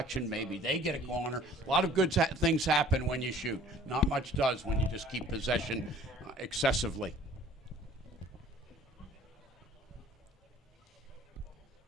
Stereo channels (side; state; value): both; normal; correlation 0.51